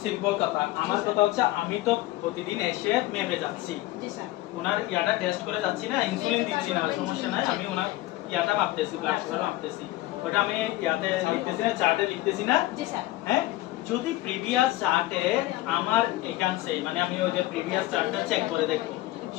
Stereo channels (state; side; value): quieter; right; 17.3 dB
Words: সিম্পল কথা আমার কথা হচ্ছে আমি তো প্রতিদিন এসে মেপে যাচ্ছি জি স্যার ওনার ইয়াটা টেস্ট করে যাচ্ছি না ইনসুলিন দিচ্ছি না সমস্যা নাই আমি ওনার ইয়াটা মাপতেছি ব্লাড সুগার মাপতেছি ওটা আমি ইয়াতে লিখতেছি না চার্টে লিখতেছি না জি স্যার হ্যাঁ যদি প্রিভিয়াস চার্টে আমার একাংশে মানে আমি ওই যে প্রিভিয়াস চার্টটা চেক করে দেখব